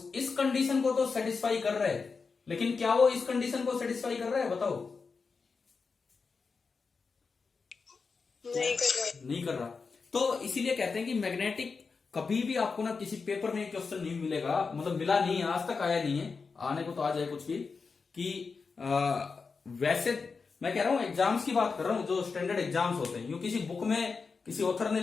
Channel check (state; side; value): quieter; right; 4.9 dB